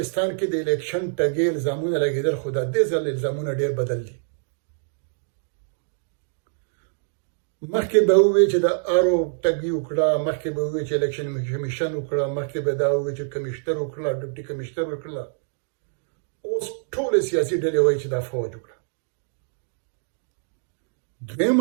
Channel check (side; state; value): left; silent; digital silence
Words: کې د الیکشن ټګي الزامونه لګېدل، خو دا دې ځل الزامونه ډېر بدل دي. مخکې به ووایي چې د آرو ټګي وکړه، مخکې به ووایي چې الیکشن کمیشن وکړه، مخکې به دا ووایي چې کمیشنر وکړه، ډپټي کمیشنر وکړه. اوس ټولې سیاسي ډلې وایي چې دا فوج وکړه.